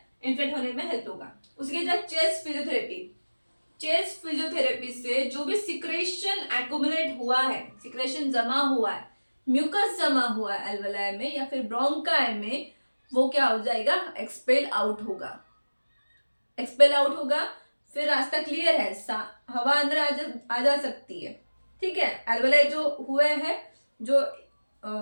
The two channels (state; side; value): inverted; both; correlation -1.00